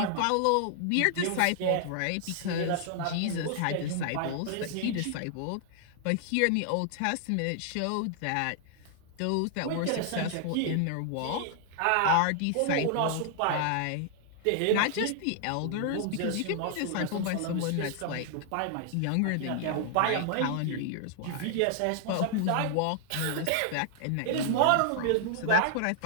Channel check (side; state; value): both; different; correlation -0.01